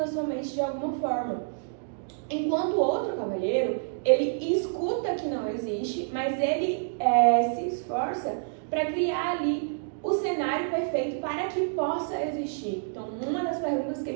a sua mente de alguma forma. Enquanto o outro cavalheiro, ele escuta que não existe, mas ele se esforça para criar ali o cenário perfeito para que possa existir. Então, uma das perguntas que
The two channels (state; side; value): silent; left; digital silence